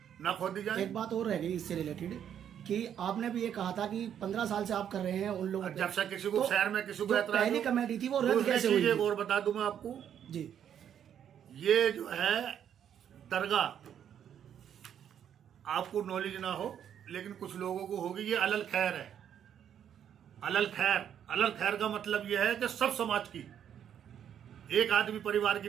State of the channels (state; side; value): quieter; left; 9.3 dB